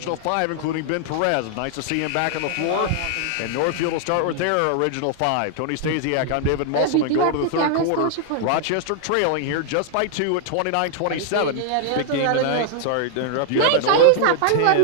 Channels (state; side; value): different; both; correlation -0.01